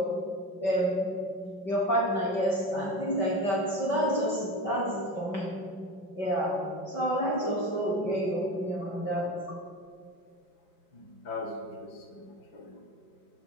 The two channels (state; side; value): late; right; 5.4 ms